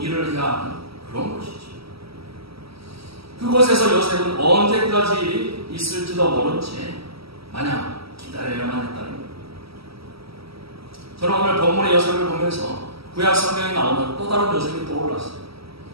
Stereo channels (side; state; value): left; late; 0.76 ms